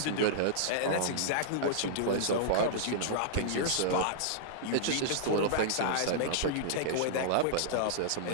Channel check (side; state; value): both; different; correlation -0.02